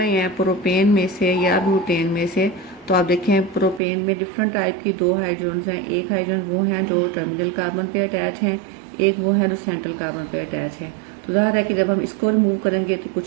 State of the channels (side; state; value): left; drops out; at 3.8 s